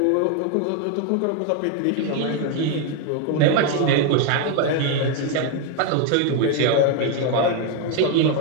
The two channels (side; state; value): both; different; correlation 0.01